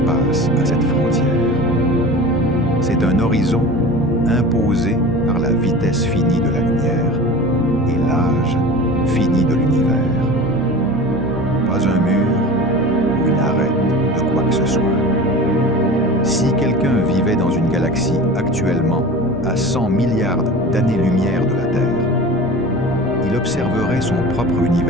à cette frontière. C'est un horizon imposé par la vitesse finie de la lumière et l'âge fini de l'univers. Pas un mur ou une arête de quoi que ce soit. Si quelqu'un vivait dans une galaxie actuellement à 100 milliards d'années-lumière de la Terre, il observerait son propre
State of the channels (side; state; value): both; normal; correlation 0.35